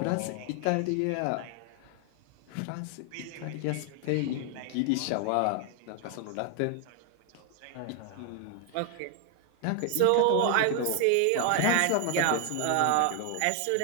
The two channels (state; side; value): different; both; correlation 0.00